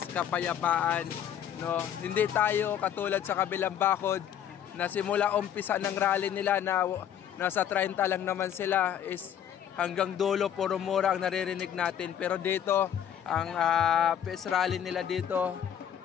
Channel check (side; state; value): right; quieter; 9.6 dB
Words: kapayapaan, no? Hindi tayo katulad sa kabilang bakod na simula umpisa ng rally nila na nasa 30 lang naman sila, is hanggang dulo puro mura ang naririnig natin. Pero dito, ang peace rally nila dito,